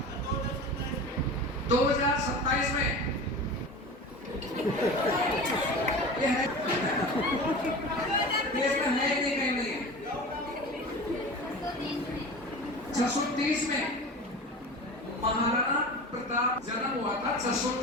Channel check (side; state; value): both; normal; correlation 0.33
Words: 2027 में ये है, ये इसमें है नहीं, कहीं नहीं है। 630 में महाराणा प्रताप जन्म हुआ था,